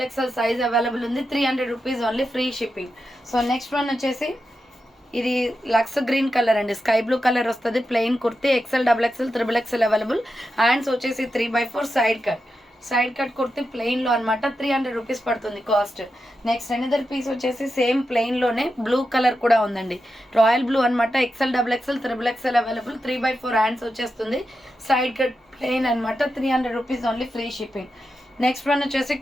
size available ఉంది. 300 rupees only, free shipping. So next one వచ్చేసి ఇది లక్స్ గ్రీన్ కలర్ అండి, స్కై బ్లూ కలర్ వస్తుంది. Plain kurti, XXL available. Hands వచ్చేసి 3/4. సైడ్ కట్ కుర్తీ ప్లెయిన్లో అనమాట. 300 రూపీస్ పడుతుంది కాస్ట్. నెక్స్ట్ అనదర్ పీస్ వచ్చేసి సేమ్ ప్లెయిన్లోనే బ్లూ కలర్ కూడా ఉందండి, రాయల్ బ్లూ అనమాట. XXL available. 3/4 హ్యాండ్స్ వచ్చేస్తుంది. సైడ్ కట్ ప్లెయిన్ అనమాట. 300 rupees only, free shipping. Next one వచ్చేసి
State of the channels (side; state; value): both; normal; correlation 0.88